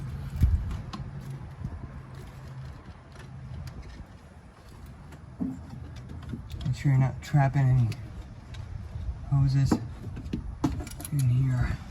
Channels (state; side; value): identical; both; correlation 1.00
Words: Make sure you're not trapping any hoses in here.